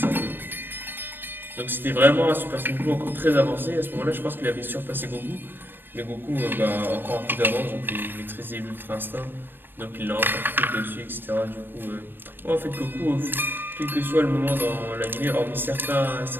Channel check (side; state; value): left; late; 0.096 ms